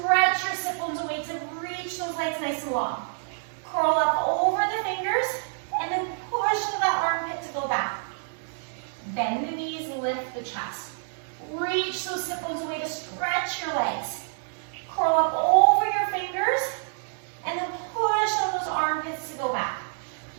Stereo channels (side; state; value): left; silent; digital silence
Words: your sit bones away to reach those legs nice and long. Curl up over the fingers, and then push to that armpit to go back. Bend the knees, lift the chest. Reach those sit bones away to stretch your legs. Curl up over your fingers, and then push on those armpits to go back.